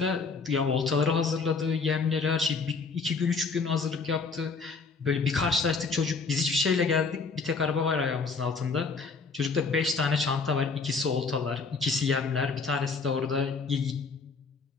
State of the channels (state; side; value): quieter; right; 4.6 dB